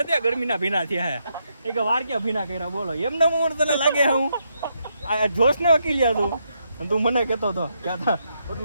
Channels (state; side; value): inverted; both; correlation -0.79